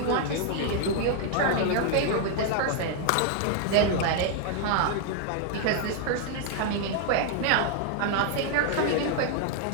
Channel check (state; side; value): different; both; correlation 0.00